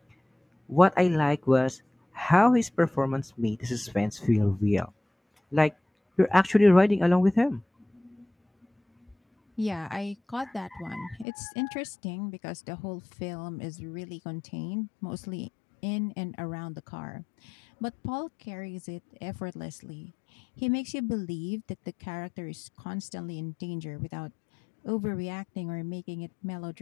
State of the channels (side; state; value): right; drops out; at 11.2 s